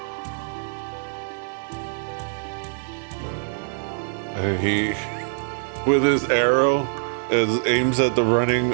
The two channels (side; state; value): left; silent; digital silence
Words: And he, with his arrow, aims at the running